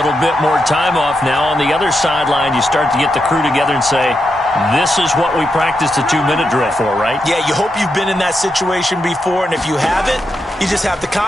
bit more time off. Now on the other sideline, you start to get the crew together and say, this is what we practiced a 2-minute drill for, right? Yeah, you hope you've been in that situation before, and if you haven't, you just have the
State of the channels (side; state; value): both; normal; correlation 0.85